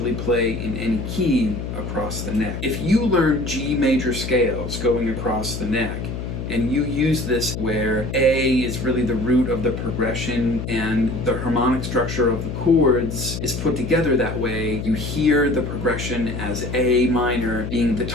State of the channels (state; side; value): noise; left; hum, 5 dB below the sound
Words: play in any key across the neck. If you learn G major scales going across the neck, and you use this where A is really the root of the progression and the harmonic structure of the chords is put together that way, you hear the progression as A minor being the